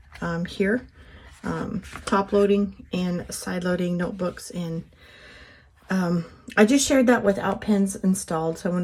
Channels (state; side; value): identical; both; correlation 1.00